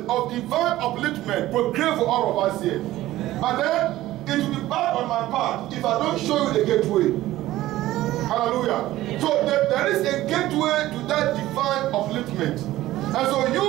of divine upliftment proclaimed for all of us here. But then, it will be bad on my part if I don't show you the gateway. Hallelujah. So there is a gateway to that divine upliftment. And so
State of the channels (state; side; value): quieter; left; 15.6 dB